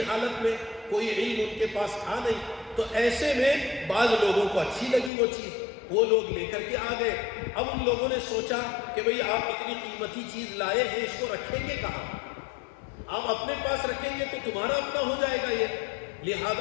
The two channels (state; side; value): drops out; right; at 5.1 s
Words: حالت میں، کوئی علم ان کے پاس تھا نہیں، تو ایسے میں بعض لوگوں کو اچھی لگی وہ چیز، وہ لوگ لے کر کے آ گئے۔ اب ان لوگوں نے سوچا کہ بھئی آپ اتنی قیمتی چیز لائے ہیں، اس کو رکھیں گے کہاں؟ آپ اپنے پاس رکھیں گے تو تمہارا اپنا ہو جائے گا یہ،